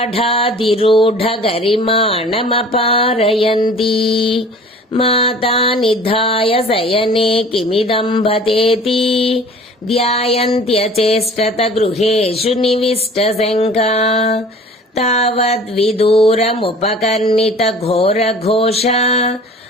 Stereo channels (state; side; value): normal; both; correlation 0.46